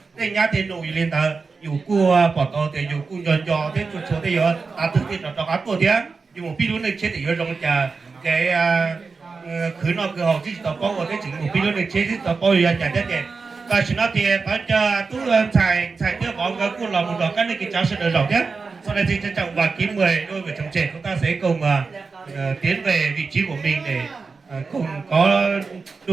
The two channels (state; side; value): quieter; left; 4.5 dB